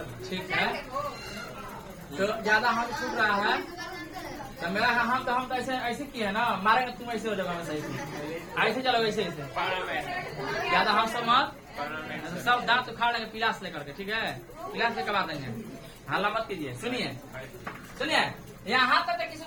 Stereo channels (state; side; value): identical; both; correlation 1.00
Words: ठीक है, तो ज्यादा हम छूट रहा है तो मेरा हम तो ऐसे किए है ना, मारेंगे तुम ऐसे हो जाओगे, सही ऐसे चलो, ऐसे ज्यादा हम सब मत, सब दांत उखाड़ लेंगे पिलास लेकर के, ठीक है? पिलास लेकर आ देंगे, हल्ला मत कीजिए। सुनिए यहाँ तक किसी